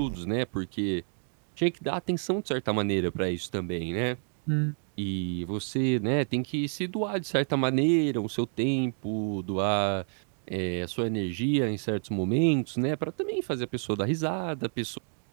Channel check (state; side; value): silent; left; 58 dB below the other